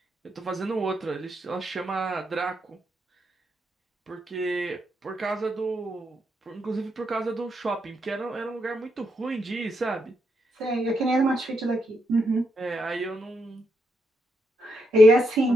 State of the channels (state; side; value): normal; both; correlation 0.80